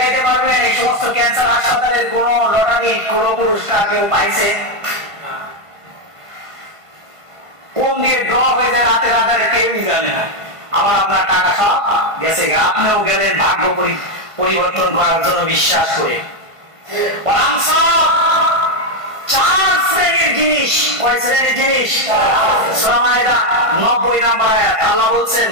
পারবেন এই সমস্ত ক্যান্সার হাসপাতালের কোন লটারি, কোন পুরস্কার কেউ পাইছে? কোন দিয়ে ড্র হয়ে যায় রাতে রাতে কেউই জানে না। আমার আপনার টাকা সব গেছে, আপনিও গেলেন ভাগ্য পরিবর্তন করার জন্য বিশ্বাস করে। 4 শ্রেণীর জিনিস, কয় শ্রেণীর জিনিস? সূরা মাইদা 90 নম্বর আয়াত আল্লাহ বলছেন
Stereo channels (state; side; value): late; left; 1.5 ms